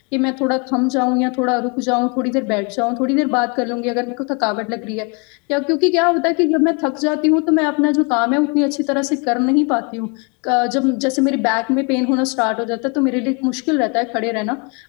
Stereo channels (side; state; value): right; quieter; 33.1 dB